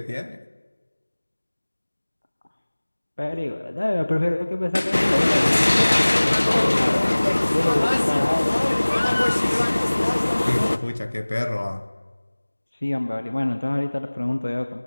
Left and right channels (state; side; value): inverted; both; correlation -1.00